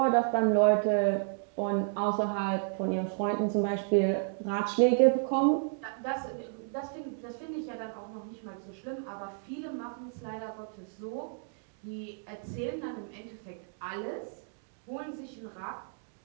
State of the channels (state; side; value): silent; left; digital silence